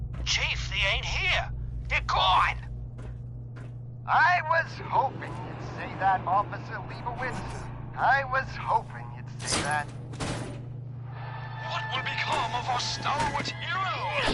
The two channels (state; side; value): identical; both; correlation 1.00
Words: Chief, they ain't here. They're gone. I was hoping you'd say that, Officer Leibowitz. I was hoping you'd say that. What will become of our stalwart